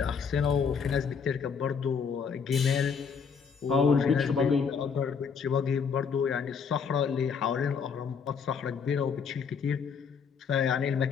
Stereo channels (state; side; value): quieter; right; 6.2 dB